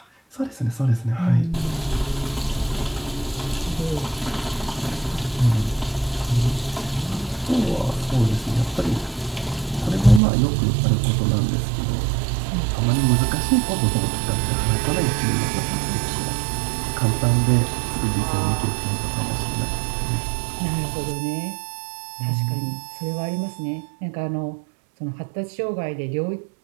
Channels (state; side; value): drops out; left; at 10.2 s